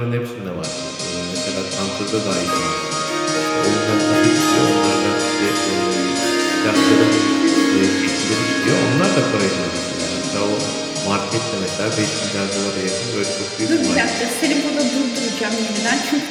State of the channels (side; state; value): both; identical; correlation 1.00